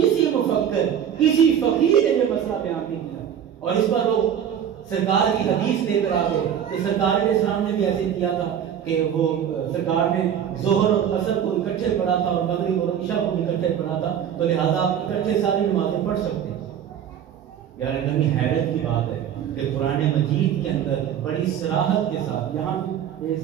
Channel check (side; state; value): left; quieter; 9.1 dB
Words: مفکر، کسی فقیر نے یہ مسئلہ بیان نہیں کیا۔ اور اس پر لوگ سرکار کی حدیث لے کر آگے کہ سرکار علیہ السلام نے بھی ایسے کیا تھا کہ وہ سرکار نے ظہر اور عصر کو اکٹھے پڑھا تھا اور مغرب اور عشاء کو اکٹھے پڑھا تھا، تو لہذا آپ اکٹھے ساری نمازیں پڑھ سکتے ہیں۔ یار اتنی حیرت کی بات ہے کہ قرآن مجید کے اندر بڑی صراحت کے ساتھ، یہاں اس